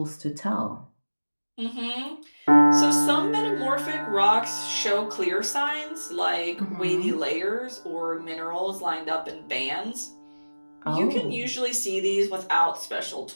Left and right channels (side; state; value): both; inverted; correlation -1.00